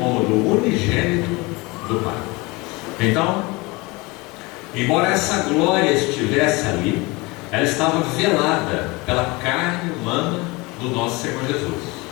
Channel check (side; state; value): right; quieter; 24.5 dB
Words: do unigênito do Pai. Então, embora essa glória estivesse ali, ela estava velada pela carne humana do nosso Senhor Jesus.